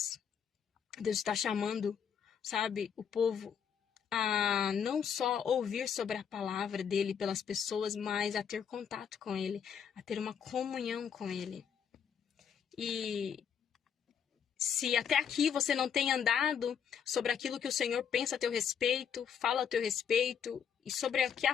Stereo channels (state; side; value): quieter; right; 7.7 dB